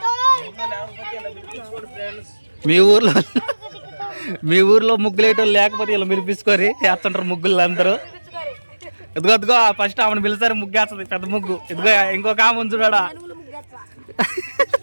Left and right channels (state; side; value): inverted; both; correlation -1.00